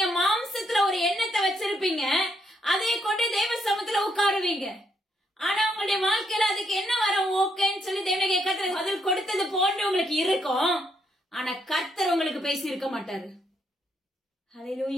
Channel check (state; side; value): normal; both; correlation 0.75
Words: மாம்சத்துல ஒரு எண்ணத்தை வச்சிருப்பீங்க, அதை கொண்டு தேவ சமூகத்துல உட்காருவீங்க. ஆனா உங்களுடைய வாழ்க்கையில அதுக்கு என்ன வரும்? ஓகேன்னு சொல்லி தேவனுடைய கர்த்தர் பதில் கொடுத்தது போன்று உங்களுக்கு இருக்கும். ஆனா கர்த்தர் உங்களுக்கு பேசி இருக்க மாட்டாரு.